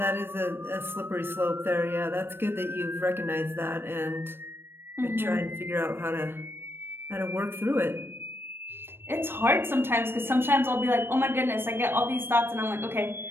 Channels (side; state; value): left; late; 0.10 ms